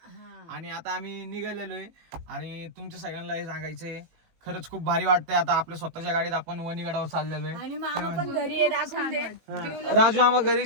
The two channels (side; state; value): left; late; 18 ms